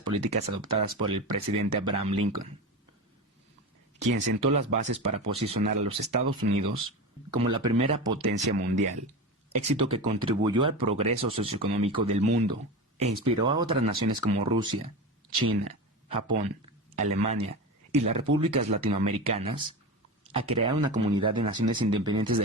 políticas adoptadas por el presidente Abraham Lincoln. quien sentó las bases para posicionar a los Estados Unidos como la primera potencia mundial, éxito que contribuyó al progreso socioeconómico del mundo e inspiró a otras naciones como Rusia, China, Japón, Alemania y las repúblicas latinoamericanas a crear una comunidad de naciones independientes de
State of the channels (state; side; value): normal; both; correlation 0.25